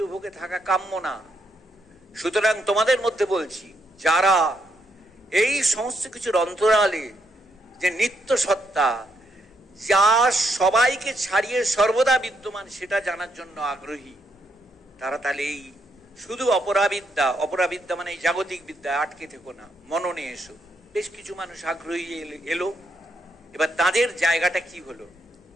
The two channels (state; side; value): normal; both; correlation 0.76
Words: ভোগে থাকা কাম্য না। সুতরাং তোমাদের মধ্যে বলছি, যারা এই সমস্ত কিছুর অন্তরালে যে নিত্য সত্তা, যা সবাইকে ছাড়িয়ে সর্বদা বিদ্যমান, সেটা জানার জন্য আগ্রহী, তারা তাহলে এই শুধু অপরাবিদ্যা মানে এই জাগতিক বিদ্যা আটকে থেকো না, মননে এসো। বেশ কিছু মানুষ আগ্রহী এলো। এবার তাদের জায়গাটা কি হলো?